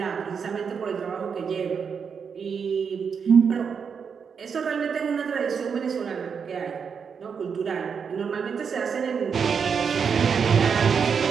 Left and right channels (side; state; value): left; quieter; 6.4 dB